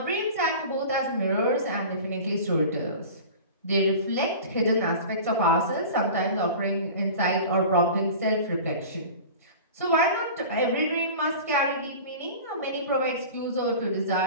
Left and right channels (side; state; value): both; inverted; correlation -0.37